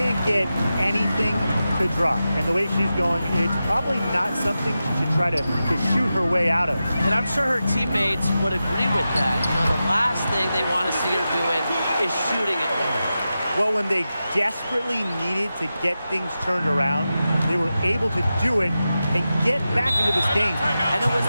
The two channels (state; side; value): inverted; both; correlation -0.92